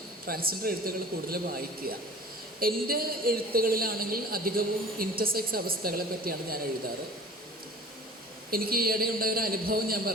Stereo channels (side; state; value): both; normal; correlation 0.43